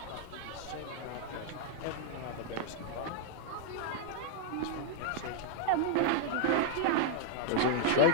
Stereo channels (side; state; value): both; different; correlation -0.01